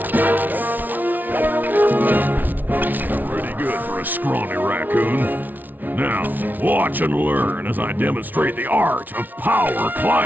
Scrawny raccoon. Now, watch and learn as I demonstrate the art of power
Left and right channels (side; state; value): left; late; 0.082 ms